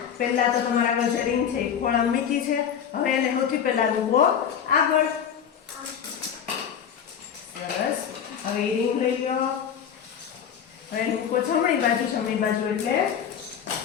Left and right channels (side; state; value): right; quieter; 8.2 dB